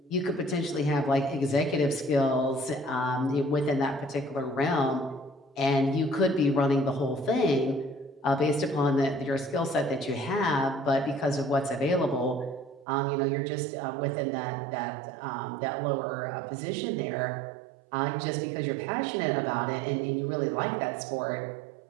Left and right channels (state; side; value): drops out; left; at 12.9 s